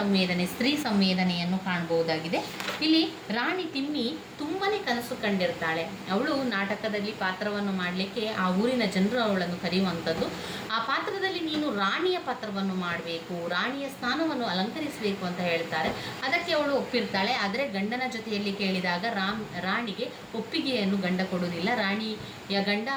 ಸ್ತ್ರೀ ಸಂವೇದನೆಯನ್ನು ಕಾಣಬಹುದಾಗಿದೆ. ಇಲ್ಲಿ ರಾಣಿ ತಿಮ್ಮಿ ತುಂಬಾ ಕನಸು ಕಂಡಿರ್ತಾಳೆ. ಅವಳು ನಾಟಕದಲ್ಲಿ ಪಾತ್ರವನ್ನು ಮಾಡಲಿಕ್ಕೆ ಆ ಊರಿನ ಜನರು ಅವಳನ್ನು ಕರೆಯುವಂಥದ್ದು. ಆ ಪಾತ್ರದಲ್ಲಿ ನೀನು ರಾಣಿಯ ಪಾತ್ರವನ್ನು ಮಾಡಬೇಕು, ರಾಣಿಯ ಸ್ಥಾನವನ್ನು ಅಲಂಕರಿಸಬೇಕು ಅಂತ ಹೇಳ್ತಾರೆ. ಅದಕ್ಕೆ ಅವಳು ಒಪ್ಪಿರ್ತಾಳೆ. ಆದರೆ ಗಂಡನ ಜೊತೆಯಲ್ಲಿ ಕೇಳಿದಾಗ ರಾಣಿಗೆ ಒಪ್ಪಿಗೆಯನ್ನು ಗಂಡ ಕೊಡುವುದಿಲ್ಲ. ರಾಣಿಯ ಗಂಡ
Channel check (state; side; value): identical; both; correlation 1.00